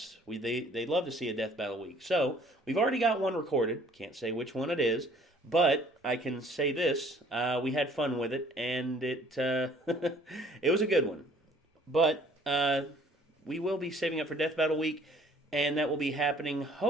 They'd love to see a Death Battle Week. So we've already got one recorded. Can't say which one it is, but I can say this: we had fun with it, and it it was a good one. But we will be saving up for Death Battle Week, and that will be happening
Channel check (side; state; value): both; normal; correlation 0.57